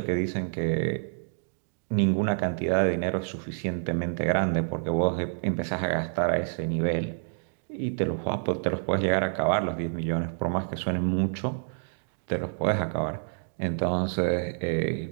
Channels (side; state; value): left; silent; digital silence